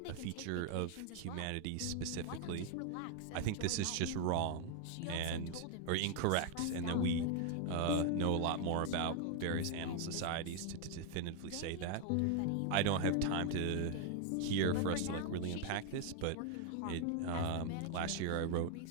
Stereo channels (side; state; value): both; different; correlation 0.00